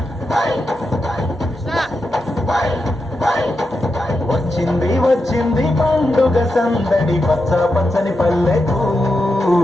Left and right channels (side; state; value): both; normal; correlation 0.87